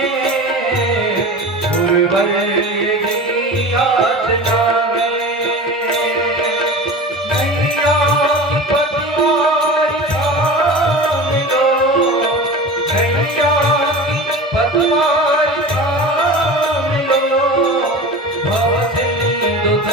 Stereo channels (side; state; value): both; normal; correlation 0.33